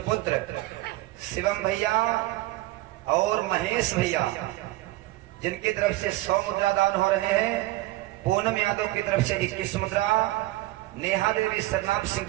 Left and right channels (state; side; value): quieter; left; 17.8 dB